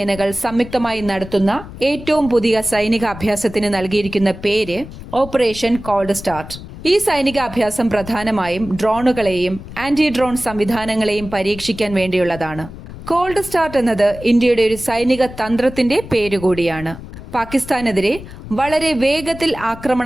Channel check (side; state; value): left; noise; rumble, 14 dB below the sound